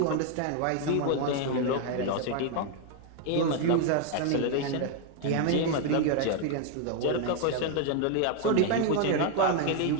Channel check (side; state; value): both; different; correlation 0.01